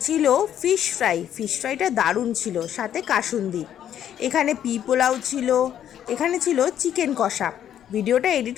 ছিল ফিশ ফ্রাইটা দারুণ ছিল, সাথে কাসুন্দি। এখানে পোলাও ছিল, এখানে ছিল চিকেন কষা। ভিডিওটা এডিট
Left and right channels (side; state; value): right; quieter; 10.3 dB